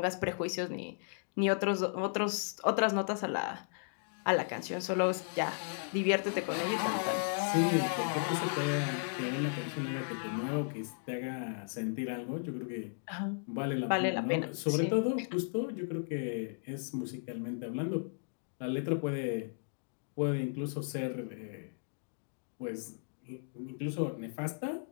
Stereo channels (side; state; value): right; silent; digital silence